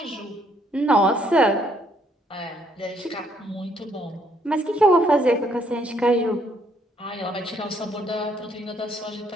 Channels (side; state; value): both; normal; correlation 0.68